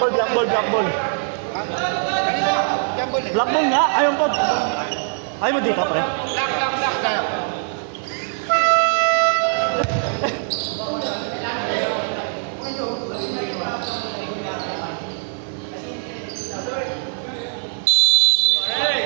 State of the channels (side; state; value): left; silent; digital silence